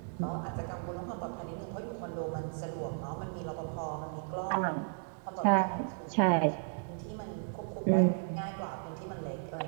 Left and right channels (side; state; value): left; silent; 55 dB below the other